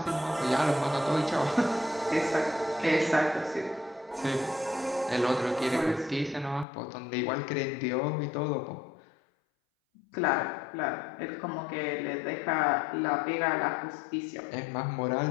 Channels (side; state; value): right; drops out; at 6.7 s